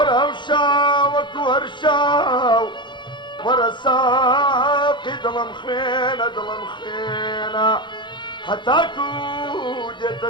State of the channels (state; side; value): late; right; 0.23 ms